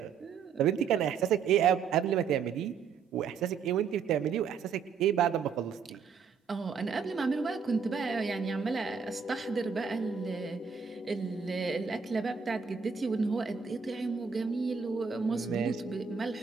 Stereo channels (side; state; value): left; quieter; 6.1 dB